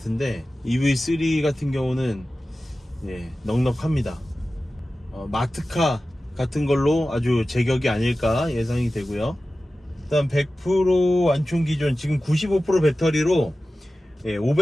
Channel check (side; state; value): both; normal; correlation 0.95